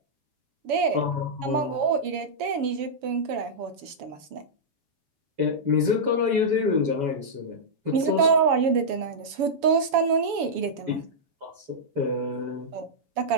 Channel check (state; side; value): late; left; 7.1 ms